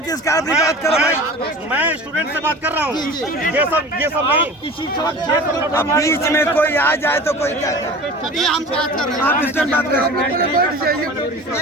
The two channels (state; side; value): normal; both; correlation 0.38